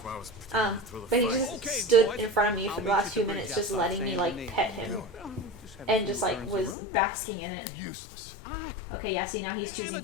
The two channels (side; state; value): right; drops out; at 6.8 s